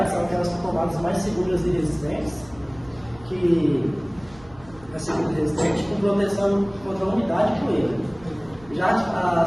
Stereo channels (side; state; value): right; noise; hum, 23 dB below the sound